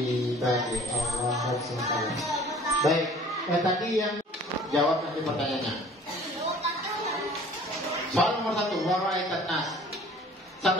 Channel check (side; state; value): both; normal; correlation 0.50